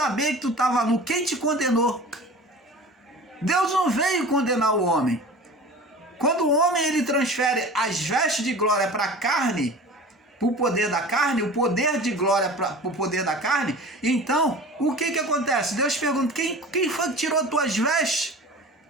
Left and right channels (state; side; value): normal; both; correlation 0.38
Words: que tu estava nu? Quem te condenou? Deus não veio condenar o homem. Quando o homem ele transfere as vestes de glória para a carne, para o poder da carne, o poder de glória para o poder da carne. Então, o que acontece? Deus pergunta, quem foi que tirou tuas vestes?